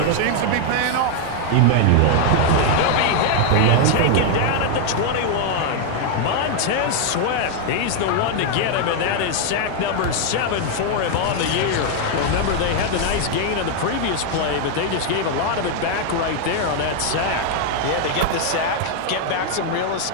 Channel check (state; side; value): different; both; correlation 0.00